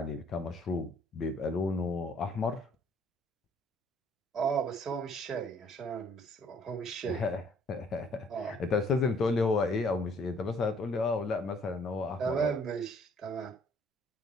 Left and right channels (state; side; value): normal; both; correlation 0.60